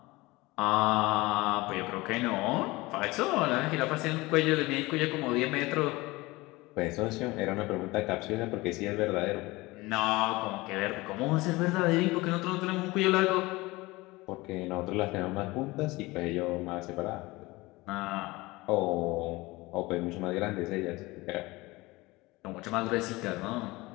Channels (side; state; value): right; quieter; 21.4 dB